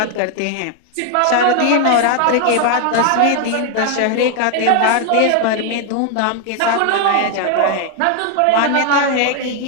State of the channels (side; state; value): both; different; correlation 0.00